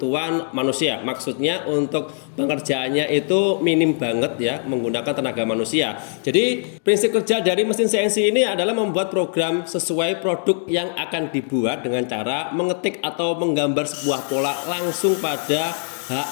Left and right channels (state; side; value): silent; right; 64 dB below the other